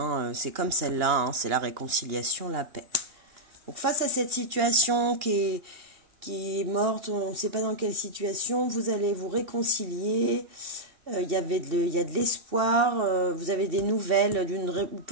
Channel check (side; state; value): left; late; 2.8 ms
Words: C'est comme celle-là, hein. C'est la réconciliation, la paix. Donc face à cette situation qui est morte, on ne sait pas dans quelle situation, vous allez vous réconcilier, il y a de l'espoir, vous avez des nouvelles,